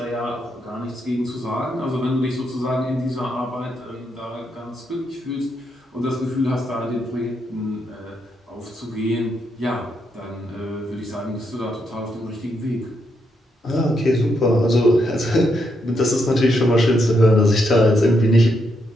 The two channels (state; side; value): normal; both; correlation 0.79